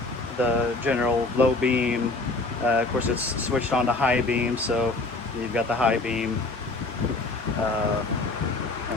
the general low beam. Of course it's switched on to high beam, so you've got the high beam,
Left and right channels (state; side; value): quieter; right; 3.2 dB